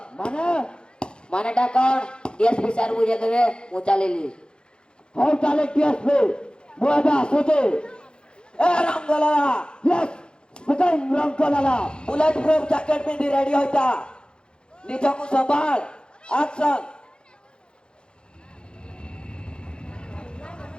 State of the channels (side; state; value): right; late; 0.051 ms